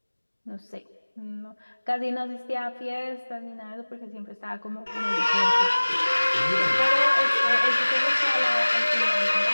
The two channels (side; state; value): both; inverted; correlation -1.00